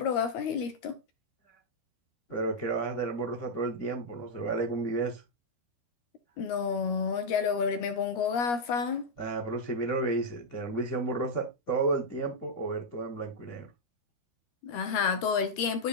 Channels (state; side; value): late; right; 13 ms